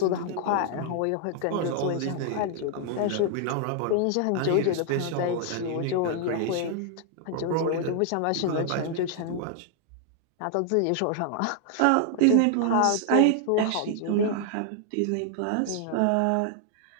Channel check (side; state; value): both; different; correlation 0.00